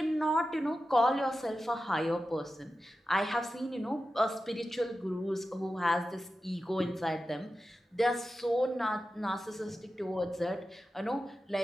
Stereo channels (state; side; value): normal; both; correlation 0.93